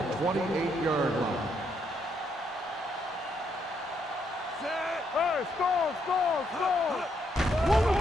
line. Hey, score. One of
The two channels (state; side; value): normal; both; correlation 0.75